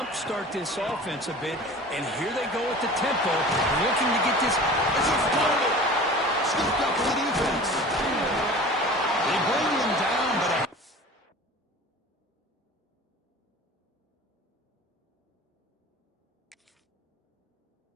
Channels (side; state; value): both; normal; correlation 0.40